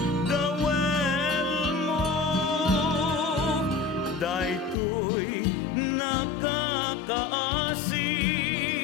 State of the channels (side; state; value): right; drops out; at 4.8 s